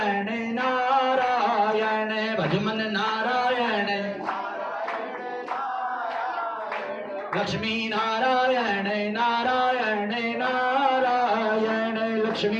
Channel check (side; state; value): both; identical; correlation 1.00